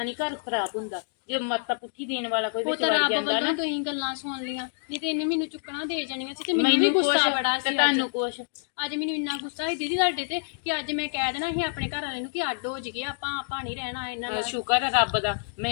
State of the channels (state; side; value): silent; right; digital silence